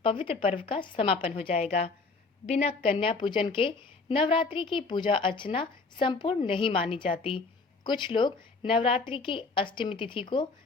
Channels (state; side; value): quieter; right; 4.0 dB